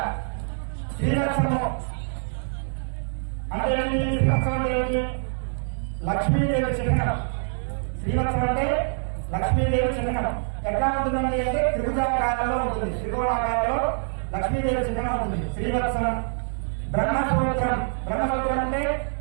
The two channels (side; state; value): left; silent; digital silence